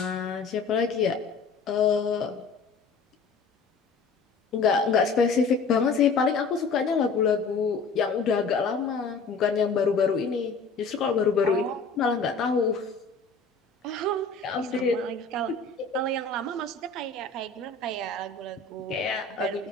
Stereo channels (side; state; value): right; quieter; 4.5 dB